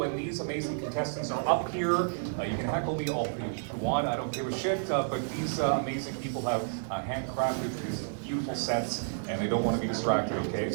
these amazing contestants are up here. You can heckle me all if you want, I don't give a shit. But these amazing people have handcrafted these beautiful sets, and they don't want to be distracted, okay?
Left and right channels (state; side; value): silent; left; digital silence